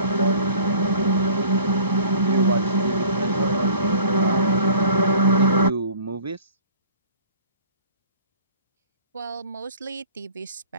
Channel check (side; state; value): both; inverted; correlation -0.46